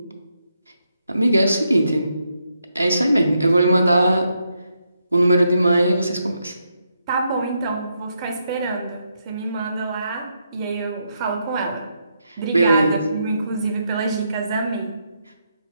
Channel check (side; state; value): both; inverted; correlation -0.80